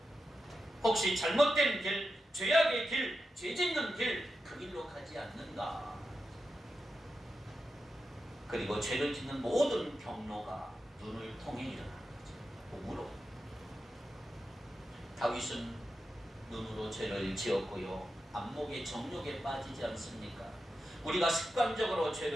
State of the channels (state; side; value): normal; both; correlation 0.89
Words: 혹시 잘못된 길, 죄악의 길, 죄 짓는 길, 그 길로 가지 않는가? 그리고 죄를 짓는 모든 경로가 눈을 통해 일어나는 거죠. 몸으로. 다윗은 눈으로 죄를 지었고요. 안목의 정욕에 빠지지 않습니까? 우리가 습관적으로